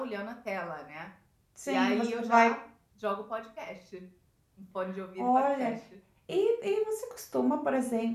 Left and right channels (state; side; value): identical; both; correlation 1.00